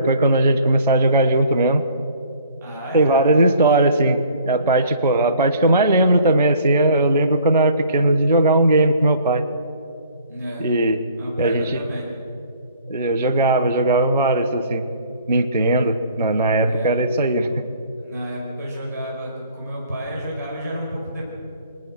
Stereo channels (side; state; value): both; inverted; correlation -0.55